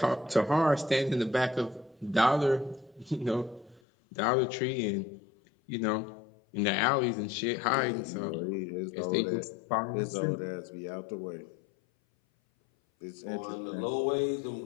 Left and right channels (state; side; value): drops out; right; at 3.8 s